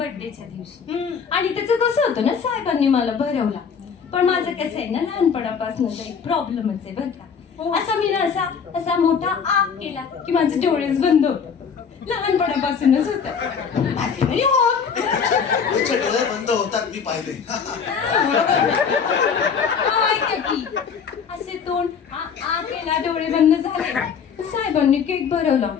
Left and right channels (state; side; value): quieter; right; 6.5 dB